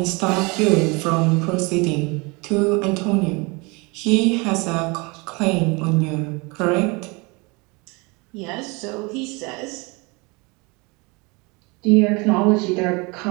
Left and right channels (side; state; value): left; quieter; 27.5 dB